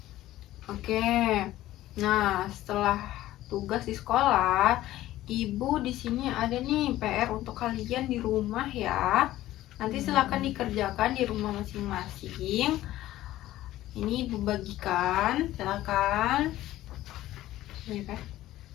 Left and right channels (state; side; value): quieter; right; 14.9 dB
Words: Oke. Nah, setelah tugas di sekolah, Ibu di sini ada nih PR untuk kalian di rumah ya. Nanti silakan dikerjakan di rumah masing-masing. Ini Ibu bagikan, silakan. Ya kan?